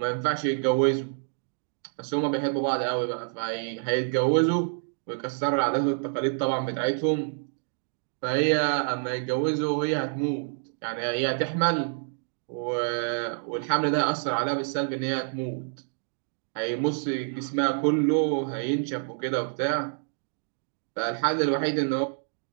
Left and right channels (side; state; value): left; silent; digital silence